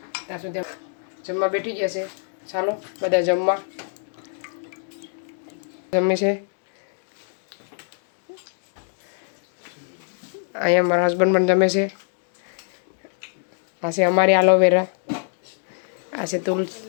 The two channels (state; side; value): silent; right; 56 dB below the other